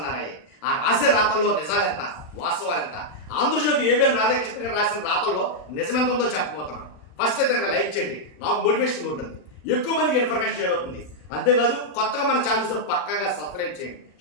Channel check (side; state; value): right; late; 39 ms